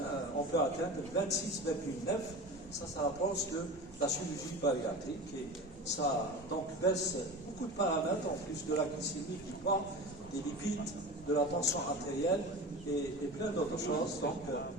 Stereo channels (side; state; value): both; normal; correlation 0.32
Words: on peut atteindre 26,9. Ça rapproche de la chirurgie bariatrique et ça donc baisse beaucoup de paramètres en plus de la glycémie, du poids, des lipides, de la tension artérielle et plein d'autres choses. Donc